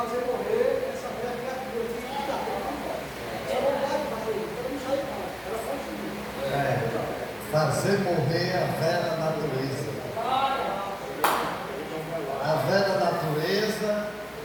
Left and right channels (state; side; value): identical; both; correlation 1.00